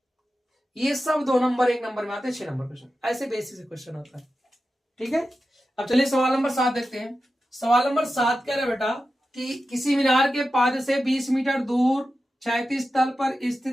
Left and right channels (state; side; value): normal; both; correlation 0.92